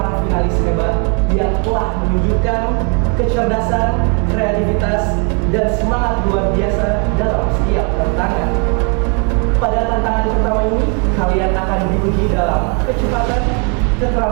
finalis hebat yang telah menunjukkan kecerdasan, kreativitas, dan semangat luar biasa dalam setiap tantangan. Pada tantangan pertama ini, kalian akan diuji dalam kecepatan,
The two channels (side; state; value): left; quieter; 37.5 dB